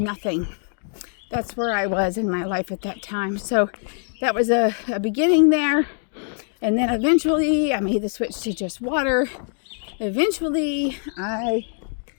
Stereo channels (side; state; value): right; silent; 60 dB below the other